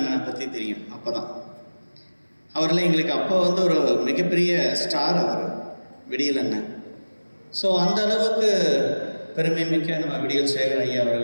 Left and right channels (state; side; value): inverted; both; correlation -1.00